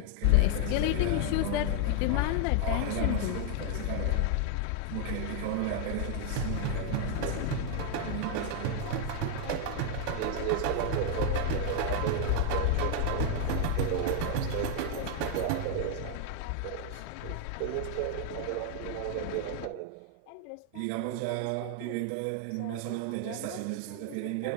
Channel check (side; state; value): both; different; correlation 0.00